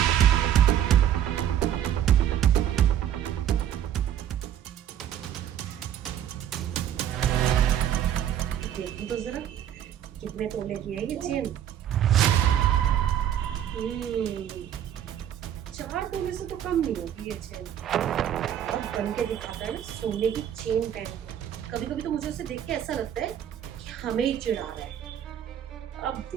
देखो तो जरा कितने तोले की है ये चेन। 4 तोले से तो कम नहीं होगी ये चेन। अब बन के दिखाता है ना सोने की चेन पहन के। कभी कभी तो मुझे उसे देख के ऐसा लगता है कि हमें ही चिढ़ा रहा है। अब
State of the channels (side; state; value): left; quieter; 10.4 dB